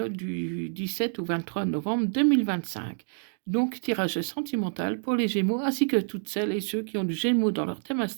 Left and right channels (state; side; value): silent; left; 59 dB below the other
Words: du 17 au 23 novembre 2025. Donc, tirage sentimental pour les Gémeaux, ainsi que toutes celles et ceux qui ont du Gémeaux dans leur thème